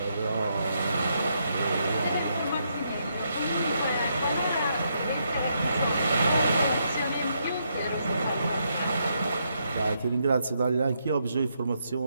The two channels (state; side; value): inverted; both; correlation -0.78